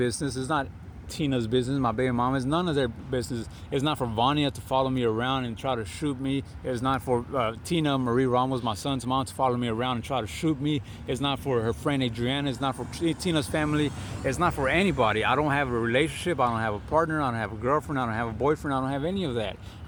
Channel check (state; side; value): identical; both; correlation 1.00